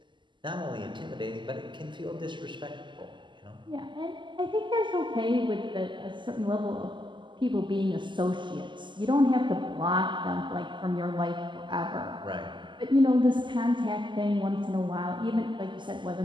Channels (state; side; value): late; left; 0.23 ms